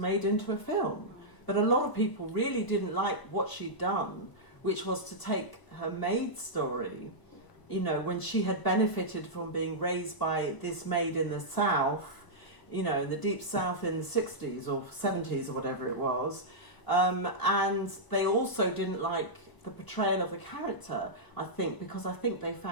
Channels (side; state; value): right; late; 1.0 ms